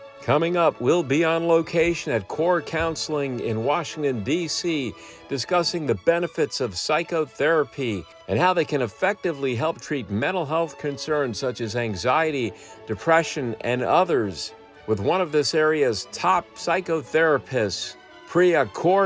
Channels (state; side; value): identical; both; correlation 1.00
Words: Coming up, we'll be on location at Kaur Counseling in Washington, D.C., discussing the benefits of psychotherapy and how they can effectively help treat mental health concerns such as anxiety, depression, and others, with one of this area's top psychotherapists, Priya